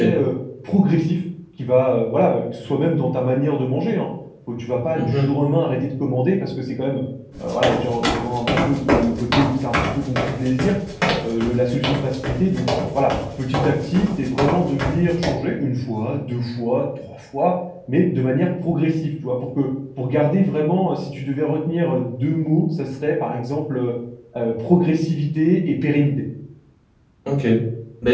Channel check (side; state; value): both; identical; correlation 1.00